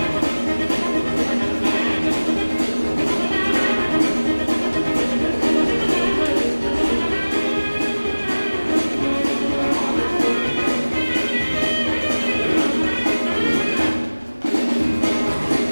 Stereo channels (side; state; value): both; inverted; correlation -1.00